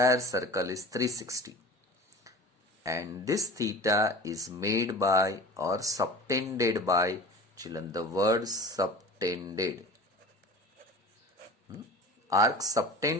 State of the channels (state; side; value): normal; both; correlation 0.37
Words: circle is 360. And this theta is made by or subtended by, children, the word subtended. Arc